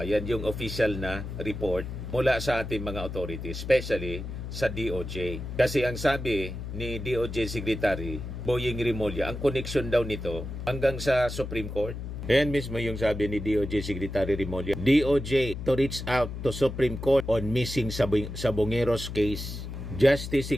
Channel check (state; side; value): noise; left; hum, 7 dB below the sound